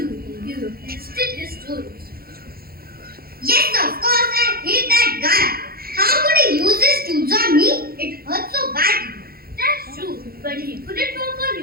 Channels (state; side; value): late; left; 0.44 ms